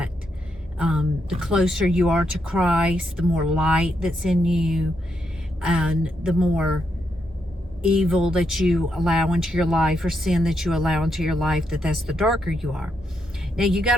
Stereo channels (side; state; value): both; normal; correlation 0.80